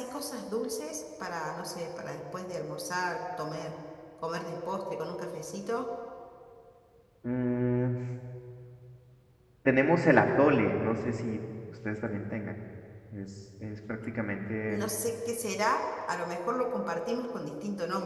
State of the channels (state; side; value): identical; both; correlation 1.00